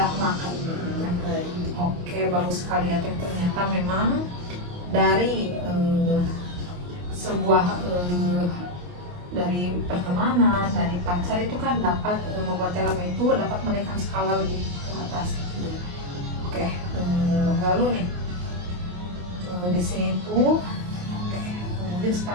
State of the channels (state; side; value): late; left; 28 ms